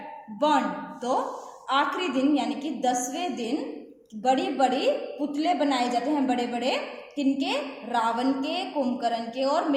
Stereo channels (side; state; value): both; identical; correlation 1.00